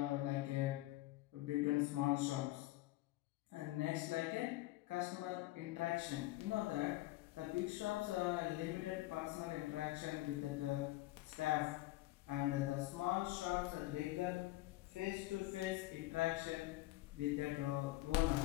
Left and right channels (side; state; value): right; quieter; 17.8 dB